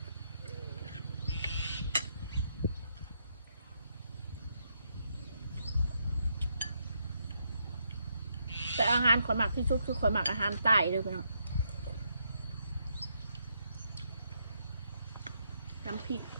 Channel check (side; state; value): both; inverted; correlation -0.79